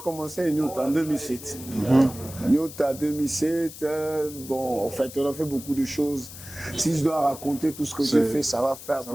commencé Nyota en 2007. Nyota 2007, bon, en fait, on a fait beaucoup de choses. Si je dois raconter tout ce que j'ai fait, ça va faire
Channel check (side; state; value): left; noise; hiss, 14 dB below the sound